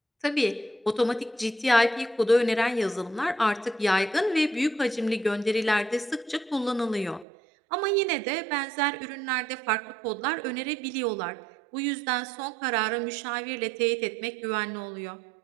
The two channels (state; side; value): drops out; left; at 7.2 s